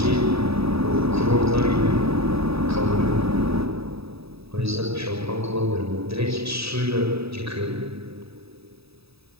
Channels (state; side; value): late; left; 0.78 ms